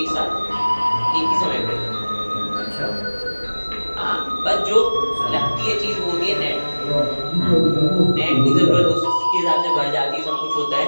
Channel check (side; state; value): both; inverted; correlation -1.00